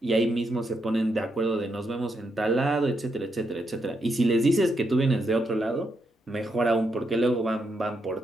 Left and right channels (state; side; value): normal; both; correlation 0.81